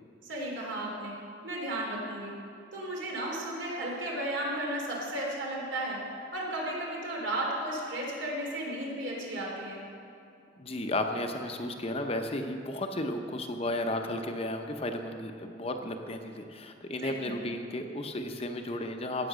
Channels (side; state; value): both; normal; correlation 0.22